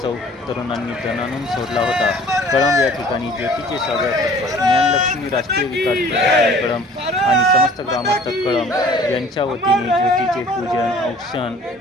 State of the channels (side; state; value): both; normal; correlation 0.51